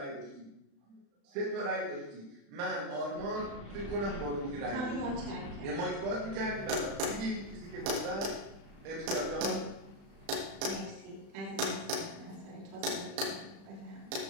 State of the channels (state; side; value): late; left; 35 ms